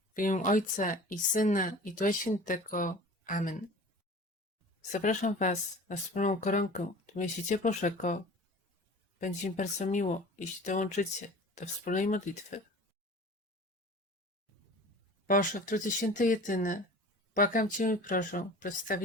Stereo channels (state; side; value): normal; both; correlation 0.41